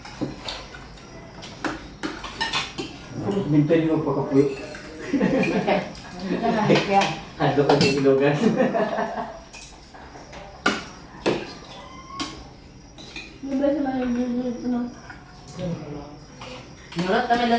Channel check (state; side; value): identical; both; correlation 1.00